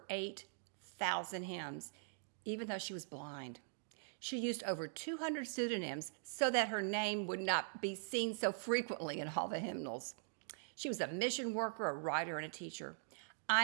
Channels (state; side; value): silent; left; digital silence